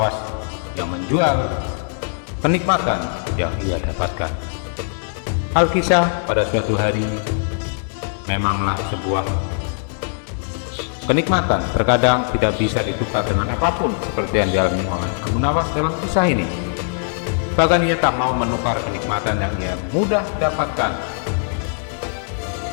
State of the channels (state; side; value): silent; right; digital silence